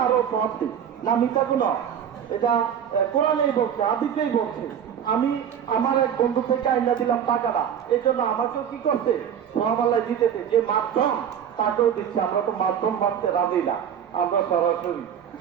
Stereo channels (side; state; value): left; quieter; 8.7 dB